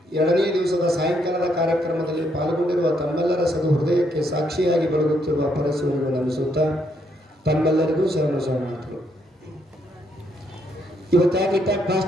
2ನೇ ದಿವಸದ ಸಾಯಂಕಾಲದ ಕಾರ್ಯಕ್ರಮದಲ್ಲಿ ಪಾಲ್ಗೊಂಡಿರುವ ತಮ್ಮೆಲ್ಲರ ಸದು ಹೃದಯಕ್ಕೆ ಸಾಕ್ಷಿಯಾಗಿ ಬೆಳಗುತ್ತಿರುವ ಪರಶಿವನಿಗೂ ನಮಿಸುತ್ತಾ ತಮ್ಮೆಲ್ಲರಿಗೂ ಶರಣಾರ್ಥಿಗಳು. ಇವತ್ತಾಗಿ ಇಟ್ಟಾಗ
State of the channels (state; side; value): normal; both; correlation 0.74